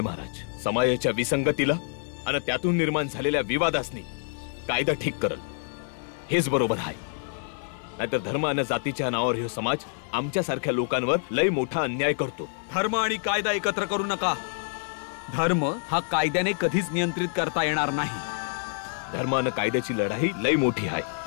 महाराज, समाजाच्या विसंगतीला आणि त्यातून निर्माण झालेल्या विवादासनी कायदा ठीक करल हेच बरोबर आहे. नाहीतर धर्म आणि जातीच्या नावावर हे समाज आमच्या सारख्या लोकांवर लय मोठा अन्याय करतो. धर्म आणि कायदा एकत्र करू नका. धर्म हा कायद्याने कधीच नियंत्रित करता येणार नाही. धर्म आणि कायद्याची लढाई लय मोठी आहे.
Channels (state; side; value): silent; right; 60 dB below the other